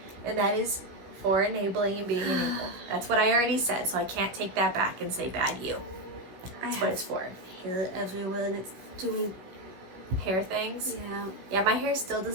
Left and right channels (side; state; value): left; late; 16 ms